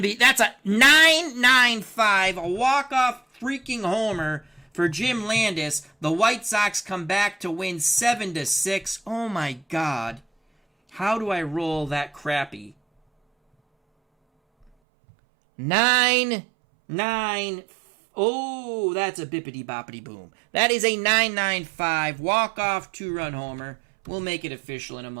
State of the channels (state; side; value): drops out; left; at 14.7 s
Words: be, that's a 9-9-5, a walk-off freaking homer for Jim Landis. The White Sox come back to win 7-6. Oh my God. How do I roll that crappy? 9-9. Oh, that's a bippity boppity boom. That is a 9-9-5 walk-off 2-run homer. We'll make it official in a